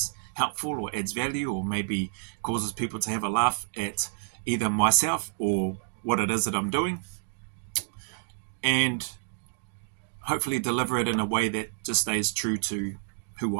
helpful or adds value, or maybe causes people to have a laugh at either myself or what it is that I'm doing, and hopefully deliver it in a way that just stays true to who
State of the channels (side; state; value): left; silent; digital silence